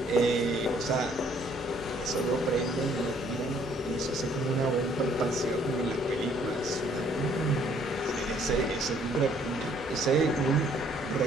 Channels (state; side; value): normal; both; correlation 0.63